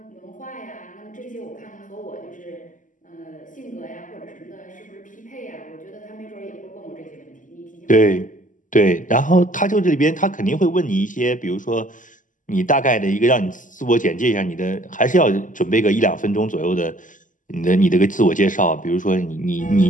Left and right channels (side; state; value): right; late; 0.38 ms